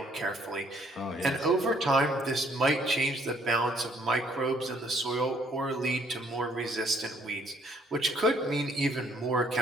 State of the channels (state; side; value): normal; both; correlation 0.64